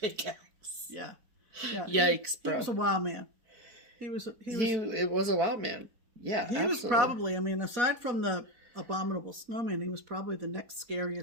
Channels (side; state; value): left; late; 4.5 ms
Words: Yeah. Yeah. Yikes, bro. He was a wild man. It was a wild man. Yeah, he was probably, I mean, aside from the Abominable Snowman, he was probably the next